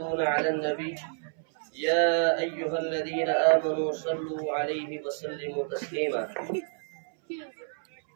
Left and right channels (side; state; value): left; silent; 58 dB below the other